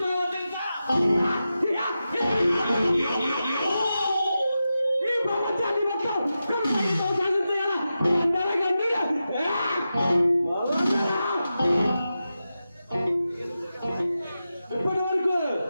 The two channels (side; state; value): both; inverted; correlation -0.91